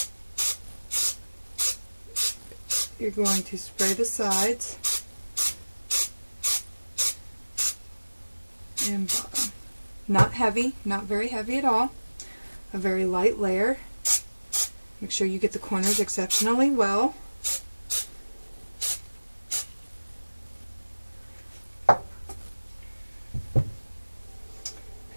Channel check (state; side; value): inverted; both; correlation -1.00